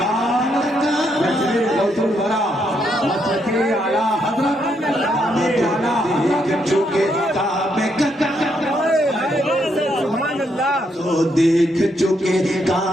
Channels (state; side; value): normal; both; correlation 0.76